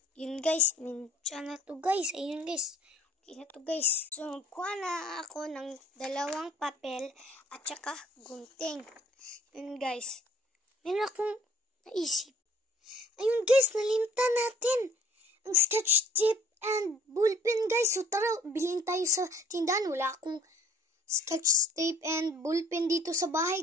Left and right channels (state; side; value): normal; both; correlation 0.55